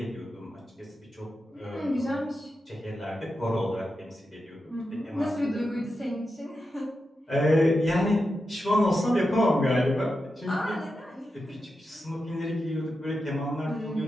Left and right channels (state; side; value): normal; both; correlation 0.89